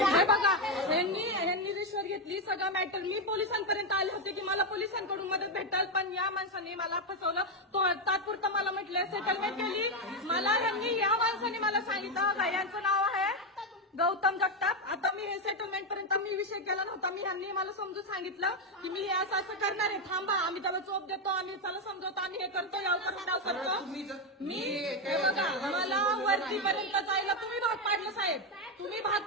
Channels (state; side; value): normal; both; correlation 0.07